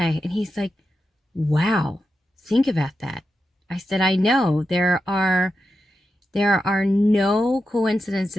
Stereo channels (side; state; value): both; normal; correlation 0.89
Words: And he's like, wow, think about that. I said, I know there are no